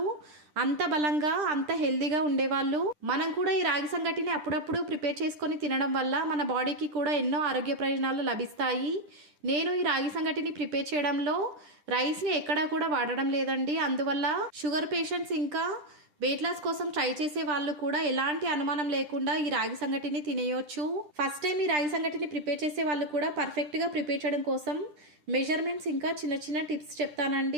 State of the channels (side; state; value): left; late; 10 ms